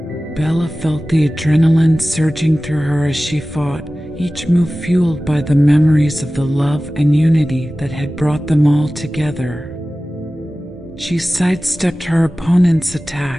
Bella felt the adrenaline surging through her as she fought, each move fueled by the memories of the love and unity that had brought them all together. She sidestepped her opponent's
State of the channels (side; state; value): both; normal; correlation 0.96